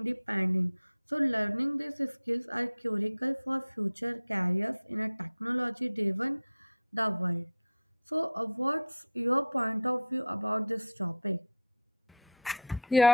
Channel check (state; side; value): inverted; both; correlation -0.41